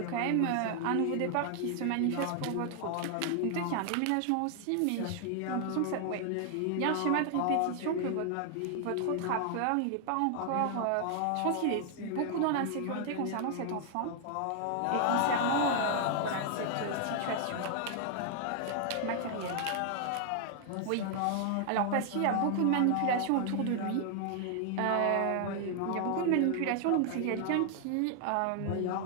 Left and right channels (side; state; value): both; different; correlation 0.00